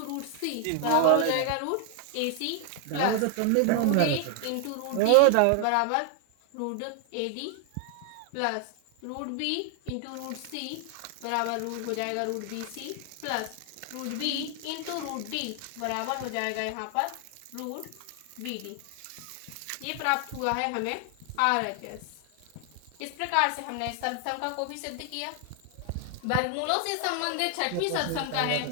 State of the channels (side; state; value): both; different; correlation 0.00